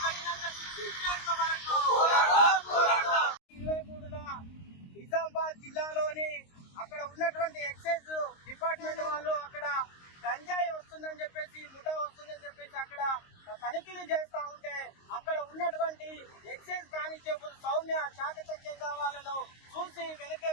కఠినంగా శిక్షించేంత వరకు. 23న నిజామాబాద్ జిల్లాలోని అక్కడ ఉన్నటువంటి ఎక్సైజ్ డిపార్ట్మెంట్ వాళ్ళు అక్కడ గంజాయి వస్తుందని చెప్పేసి, ముఠా వస్తుందని చెప్పేసి అక్కడ తనిఖీలు చేస్తా ఉంటే అక్కడ ఉన్నటువంటి ఎక్సైజ్ కానిస్టేబుల్ సౌమ్య చాకచక్యంగా వాళ్ళను చూసి వెనకే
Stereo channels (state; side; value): late; right; 22 ms